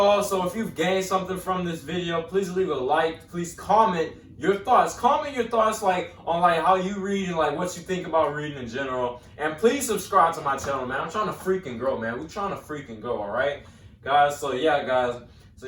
so if you've gained something from this video, please leave a like, please comment your thoughts. Comment your thoughts like on like how you read and like what you think about reading in general. And please subscribe to my channel, man. I'm trying to freaking grow, man. We're trying to freaking grow, all right? Guys, so yeah, guys. So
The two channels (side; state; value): both; identical; correlation 1.00